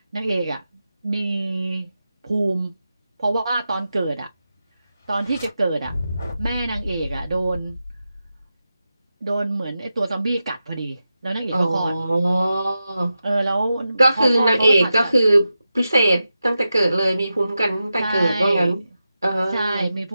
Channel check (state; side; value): inverted; both; correlation -0.91